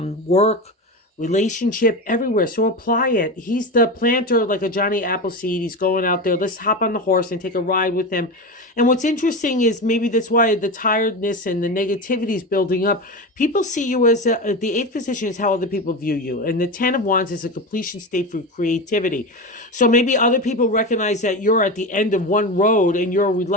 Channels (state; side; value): normal; both; correlation 0.22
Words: relationship, everywhere. So apply it. He's the planter, like a Johnny Appleseed. He's going out there. Let's hop on the horse and take a ride with him. And what's interesting is maybe that's why the tiredness and the negativity is building up. People see you as the 8th position is how other people view you. And the 10 of Wands is a completion state for creativity. So maybe other people recognize that you're at the end of one road and you're